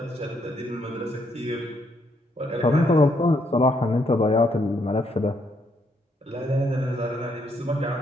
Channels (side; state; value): both; normal; correlation 0.74